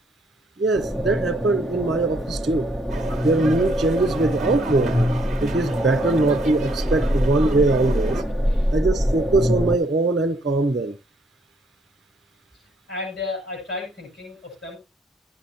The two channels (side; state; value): both; normal; correlation 0.69